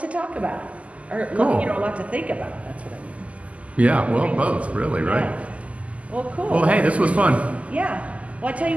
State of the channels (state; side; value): late; left; 0.067 ms